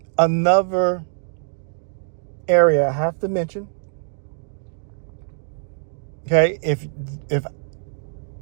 another area I have to mention. Okay,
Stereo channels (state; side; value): silent; left; digital silence